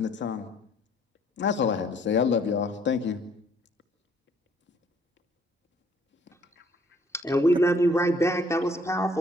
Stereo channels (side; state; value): both; normal; correlation 0.62